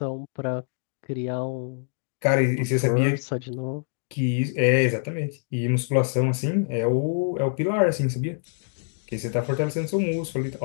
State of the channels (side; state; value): right; silent; 61 dB below the other